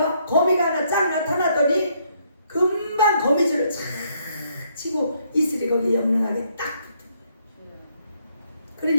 거미가 하나 쫙 나타나더니 금방 거미줄을 착 치고 이슬이 거기에 영롱하게 딱 붙은 거예요.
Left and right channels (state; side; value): inverted; both; correlation -0.71